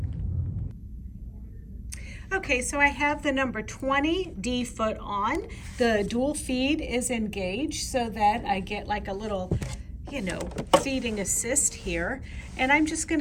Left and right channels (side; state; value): both; identical; correlation 1.00